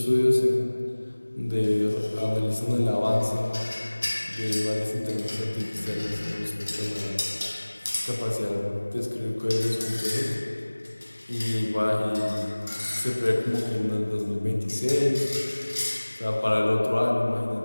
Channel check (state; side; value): inverted; both; correlation -1.00